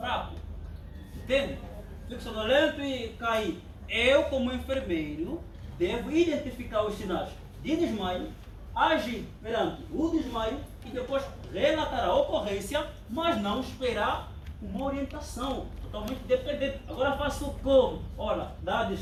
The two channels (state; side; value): identical; both; correlation 1.00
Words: Entende? Fico sonolento e caí. Eu, como enfermeiro, devo identificar os sinais de desmaio, agir perante o desmaio e depois relatar a ocorrência, mas não esperar uma orientação totalmente dependente. Agora faço como? Olha, dá